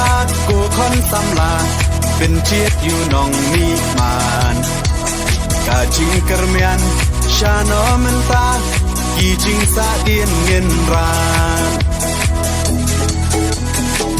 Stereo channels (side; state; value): both; identical; correlation 1.00